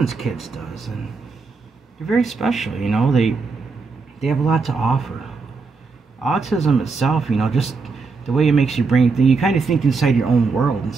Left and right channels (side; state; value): left; quieter; 4.4 dB